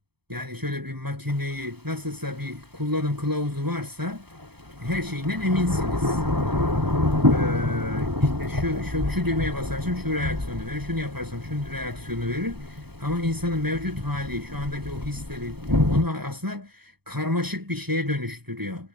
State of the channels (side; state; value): left; late; 0.97 ms